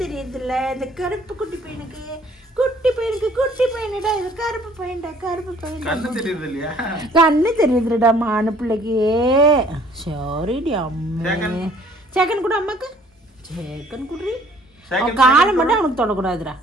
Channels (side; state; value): both; normal; correlation 0.57